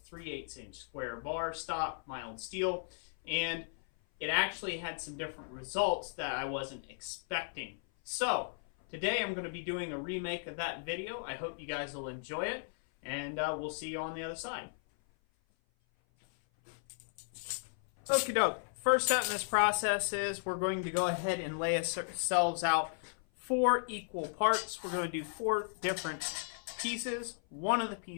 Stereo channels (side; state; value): right; silent; 54 dB below the other